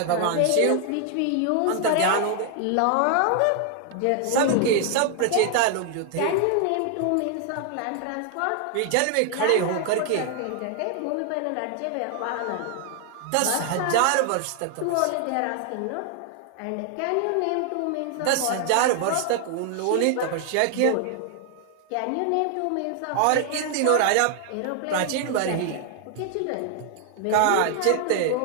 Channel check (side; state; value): both; different; correlation 0.00